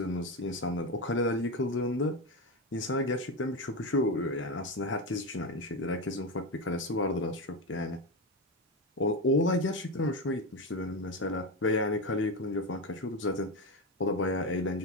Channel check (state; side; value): normal; both; correlation 0.15